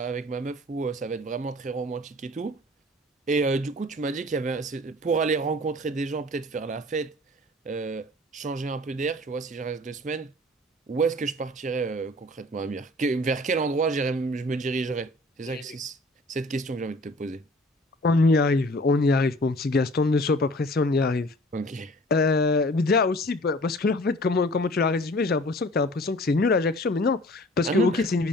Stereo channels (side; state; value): both; normal; correlation 0.49